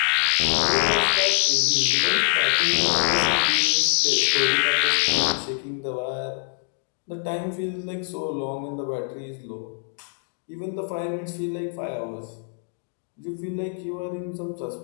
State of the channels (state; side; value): silent; right; 62 dB below the other